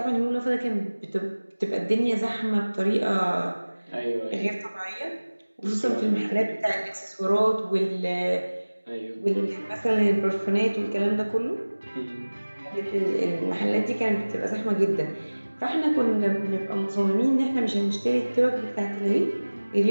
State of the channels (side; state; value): both; inverted; correlation -1.00